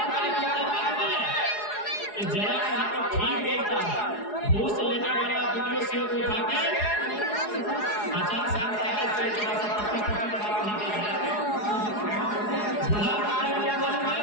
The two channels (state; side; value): late; right; 4.8 ms